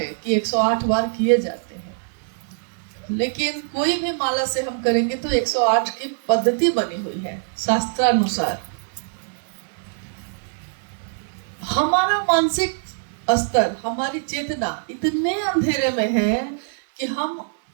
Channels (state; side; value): silent; left; digital silence